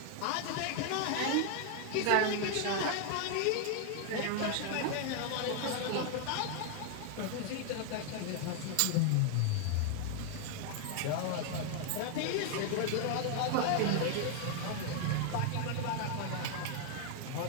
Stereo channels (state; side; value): different; both; correlation 0.00